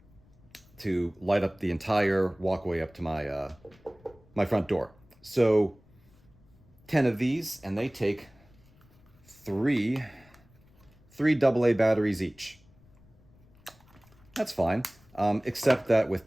to light up the entire walkway up to my front door. So 10 of these, and they take three AA batteries each. That's fine, except that with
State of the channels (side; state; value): left; noise; rumble, 28 dB below the sound